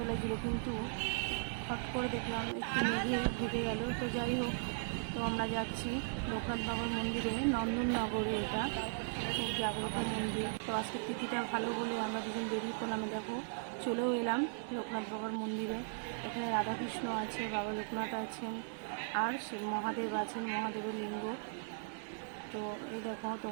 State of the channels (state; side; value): silent; left; digital silence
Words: লাগছিল, কিন্তু হট করে দেখলাম একটু মেঘে ঢেকে গেল। তো যাই হোক, তো আমরা যাচ্ছি লোকনাথ বাবার মন্দিরে, নন্দননগরে। এটা খুব জাগ্রত মন্দির। তো আজকে তিথিটা ভালো বলে আমরা দুজন বেরিয়ে পড়লাম। দেখো চলেও এলাম লোকনাথ বাবার মন্দিরে। এখানে রাধাকৃষ্ণ আছে, বাবা লোকনাথ আছেন, আর শিব মহাদেব আছেন, মহাদেবের লিঙ্গ। তো এই দেখো